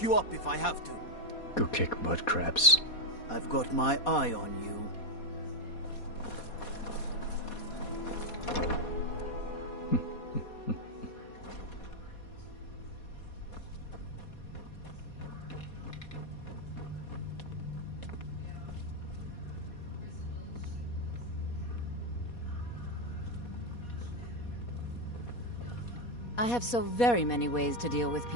you up if I have to. Go kick mud crabs. I've got my eye on you. I have so very many ways to deal with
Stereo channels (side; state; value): right; late; 4.2 ms